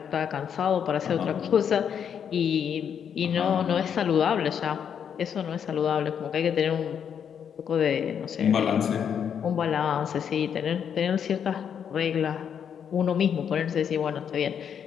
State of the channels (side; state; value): right; quieter; 8.0 dB